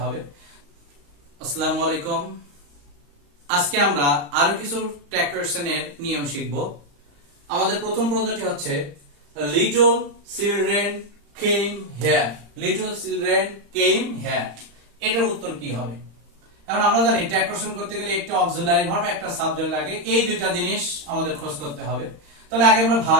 হবে। আসসালামু আলাইকুম। আজকে আমরা আরো কিছু ট্যাগ কোশ্চেনের নিয়ম শিখব। আমাদের প্রথম প্রশ্নটি হচ্ছে little children came here. Little children came here, এটার উত্তর কি হবে? এখন আমরা জানি ট্যাগ কোশ্চেন করতে গেলে একটা অক্সিলারি ভার্ব একটা সাবজেক্ট লাগে, এই দুইটা জিনিস আমাদের খোঁজ করতে হবে। তাহলে আগে আমরা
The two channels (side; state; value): left; late; 35 ms